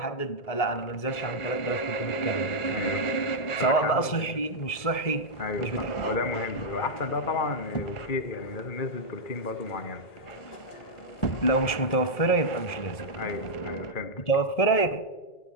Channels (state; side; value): late; right; 1.7 ms